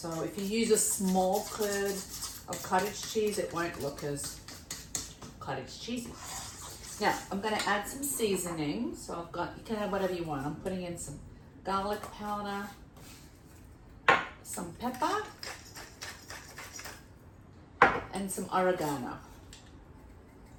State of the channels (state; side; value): identical; both; correlation 1.00